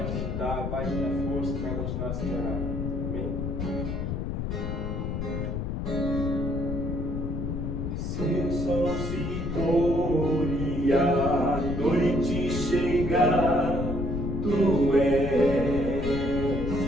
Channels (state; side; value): noise; left; rumble, 2 dB below the sound